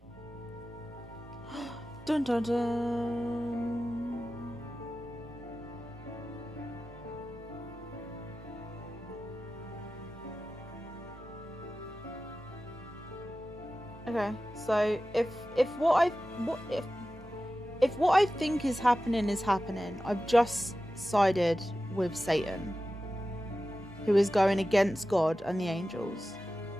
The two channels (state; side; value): normal; both; correlation 0.94